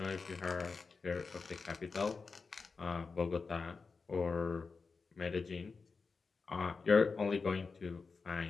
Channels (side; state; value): right; quieter; 4.6 dB